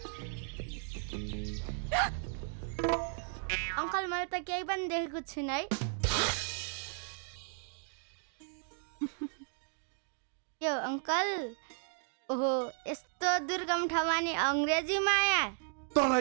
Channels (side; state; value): left; silent; 54 dB below the other